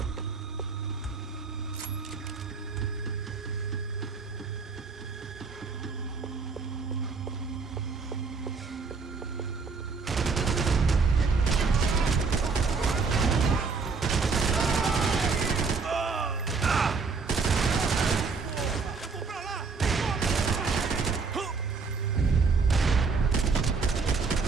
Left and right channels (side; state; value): left; quieter; 4.8 dB